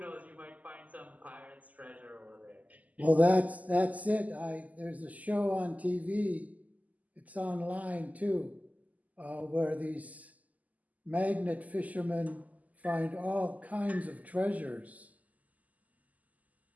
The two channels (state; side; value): late; left; 0.077 ms